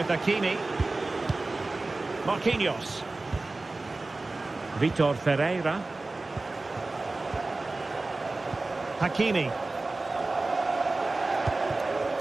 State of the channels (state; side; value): quieter; left; 3.2 dB